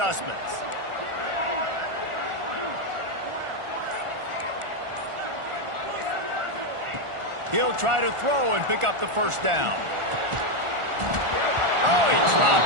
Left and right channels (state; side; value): late; left; 1.4 ms